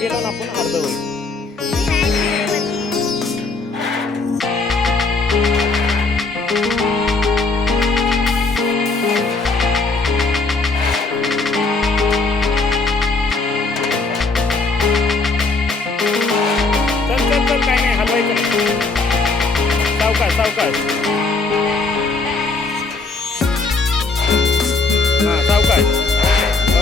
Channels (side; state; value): right; quieter; 3.8 dB